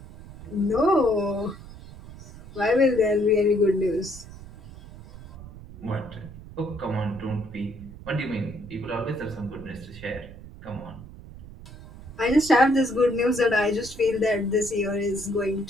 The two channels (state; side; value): noise; right; rumble, 16 dB below the sound